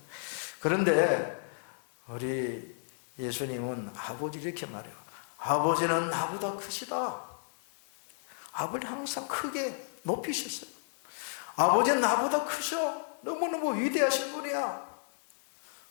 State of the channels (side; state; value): right; silent; 56 dB below the other